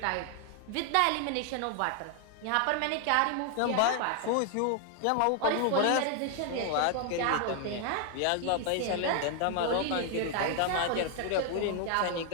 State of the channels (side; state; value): both; different; correlation 0.00